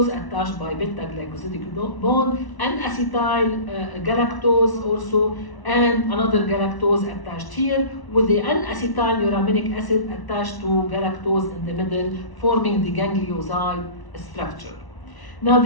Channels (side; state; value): right; late; 1.0 ms